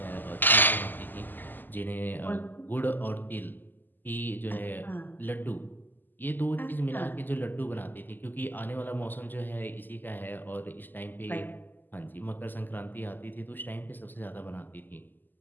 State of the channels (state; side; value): late; right; 0.089 ms